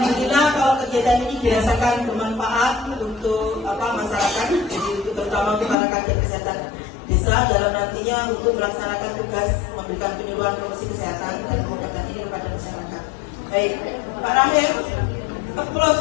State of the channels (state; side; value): drops out; right; at 5.8 s